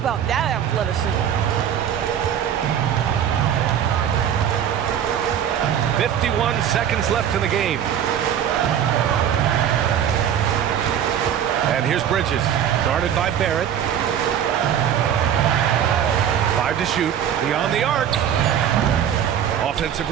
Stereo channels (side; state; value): left; quieter; 9.4 dB